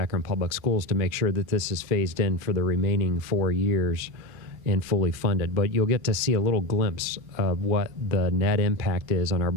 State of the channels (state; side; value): late; left; 2.4 ms